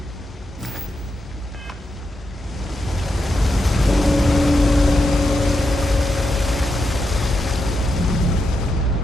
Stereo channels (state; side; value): normal; both; correlation 0.85